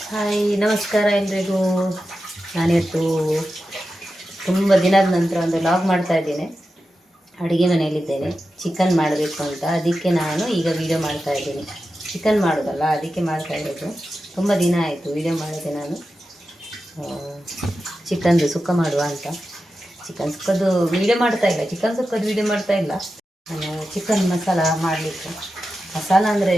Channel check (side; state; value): both; normal; correlation 0.91